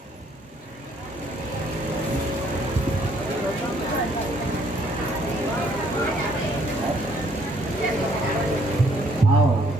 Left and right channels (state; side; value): normal; both; correlation 0.65